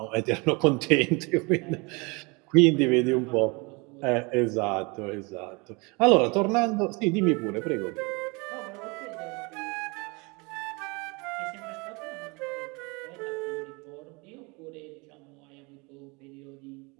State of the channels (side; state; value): left; quieter; 28.2 dB